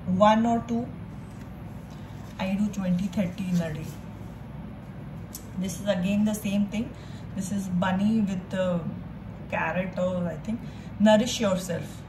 1 or 2. I do 20-30 in a day. This is again the same thing. This is bunny with the carrot, or I think nourish yourself.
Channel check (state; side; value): identical; both; correlation 1.00